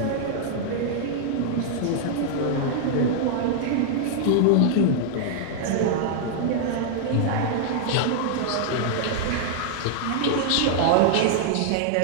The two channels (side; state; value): both; different; correlation -0.01